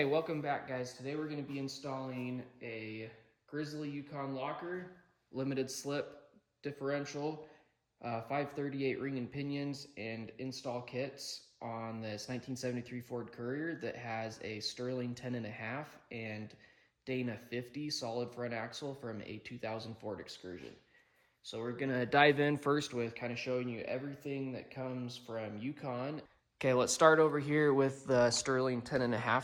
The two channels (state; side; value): identical; both; correlation 1.00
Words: welcome back, guys. Today we're going to be installing a Grizzly Yukon locker, limited slip differential, 538 ring and pinions, and install kits on this 1973 Ford Courier that has a Sterling 10.5 and Dana 50 solid front axle from a 2000 Ford Excursion. So we're gonna dive in first with kind of showing you everything that comes from Yukon. Okay, let's start over here with the Sterling